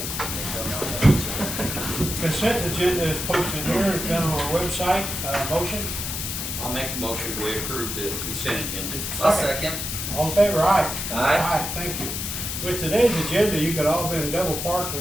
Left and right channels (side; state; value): left; noise; hiss, 4 dB below the sound